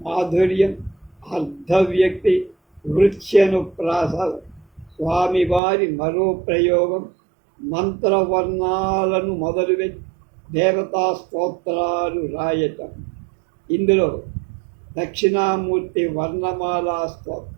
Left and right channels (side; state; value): left; drops out; at 5.6 s